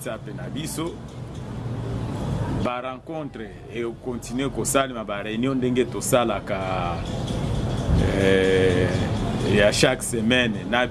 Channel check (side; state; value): both; identical; correlation 1.00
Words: na biso ba rencontre et continuer ko sala ba réunion ndenge to sala ka et à chaque semaine na